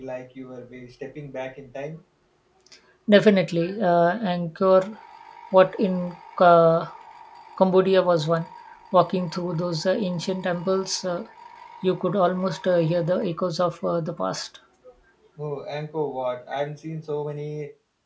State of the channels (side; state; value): both; identical; correlation 1.00